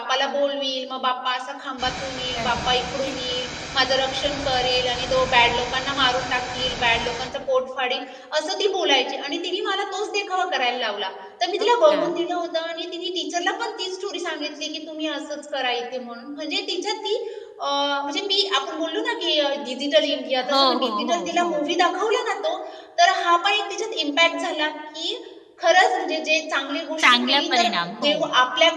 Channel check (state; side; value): identical; both; correlation 1.00